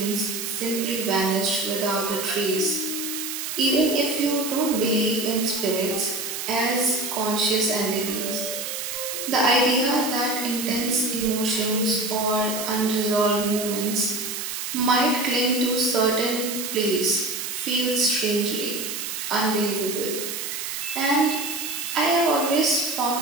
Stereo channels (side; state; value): right; noise; hiss, 5 dB below the sound